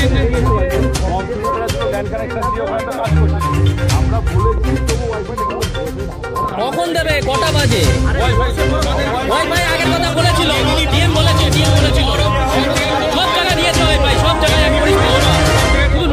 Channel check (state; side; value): identical; both; correlation 1.00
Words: কখন দেবে, কটা বাজে? ওয়াইফাই আগের কথা বলেছিল, ডিএম বলেছিল সব জায়গায় দিয়েছে ওয়াইফাই, সব জায়গায় এক পরিষেবা। শুধু